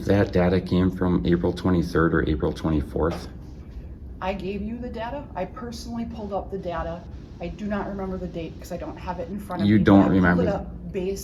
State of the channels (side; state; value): both; identical; correlation 1.00